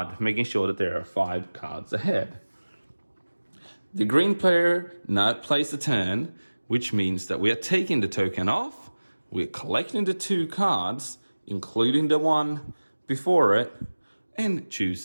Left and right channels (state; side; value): inverted; both; correlation -1.00